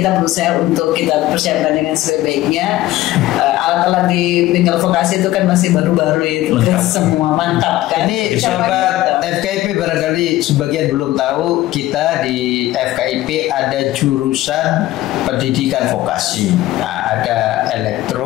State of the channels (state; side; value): quieter; right; 15.9 dB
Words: berusaha untuk kita persiapkan dengan sebaik-baiknya. Alat-alat di bengkel vokasi itu kan masih baru-baru itu, semua mantap kan. Ini sobat FKIP barangkali sebagian belum tahu, kita di FKIP ada jurusan pendidikan vokasi. Nah, ada